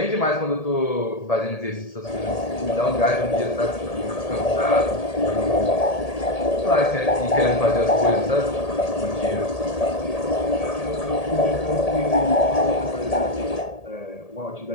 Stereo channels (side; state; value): right; late; 1.8 ms